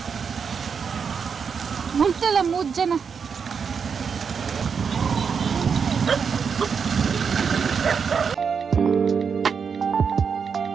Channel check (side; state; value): left; quieter; 6.3 dB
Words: ಮುಂಟೆಲ್ಲ 3 ಜನ